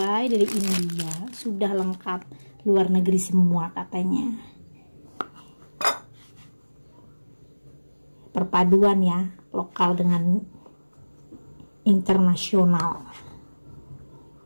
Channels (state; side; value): inverted; both; correlation -1.00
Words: dari India, sudah lengkap, luar negeri semua katanya. Perpaduan ya, lokal dengan internasional.